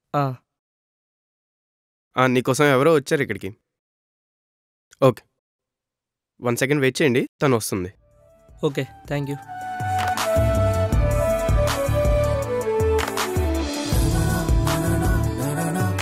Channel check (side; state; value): both; identical; correlation 1.00